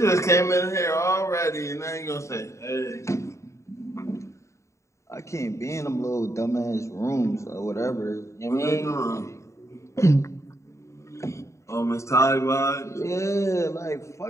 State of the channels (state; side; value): late; right; 0.14 ms